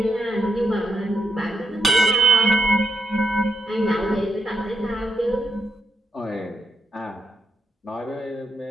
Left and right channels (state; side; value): normal; both; correlation 0.79